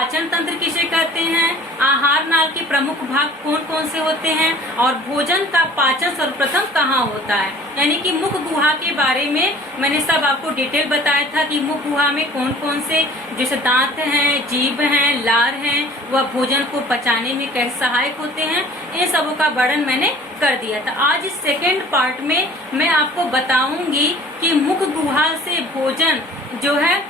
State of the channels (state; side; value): normal; both; correlation 0.48